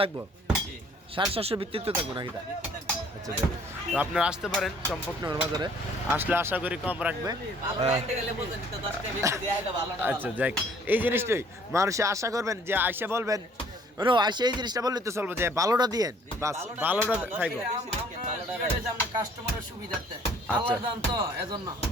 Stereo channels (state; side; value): normal; both; correlation 0.58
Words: থাকবো, 750 ভিত্তিতে থাকবো নাকি? আচ্ছা যাই, তো আপনারা আসতে পারেন চম্পকনগর বাজারে। আসলে আশা করি কম রাখবে। আচ্ছা যাই, এই জিনিসটাই মানুষে আশা করবেন যে আইসা বলবেন, আইসা এই জিনিসটা বললে তো চলবো যে ভালোটা দিয়েন, বাস ভালোটা খাইবো। কাস্টমারের সুবিধার্থে আচ্ছা। আল্লাহর দান তো এজন্য।